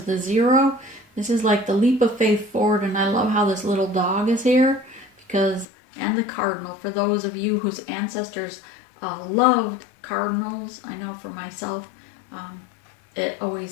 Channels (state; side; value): drops out; right; at 5.7 s